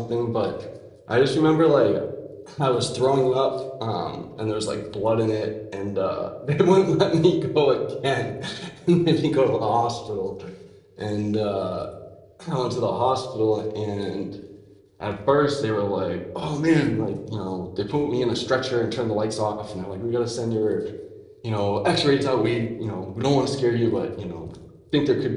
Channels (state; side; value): identical; both; correlation 1.00